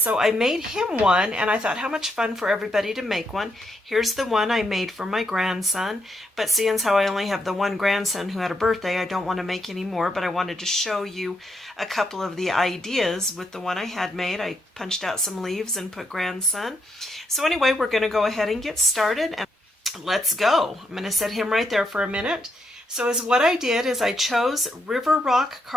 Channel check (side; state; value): both; normal; correlation 0.79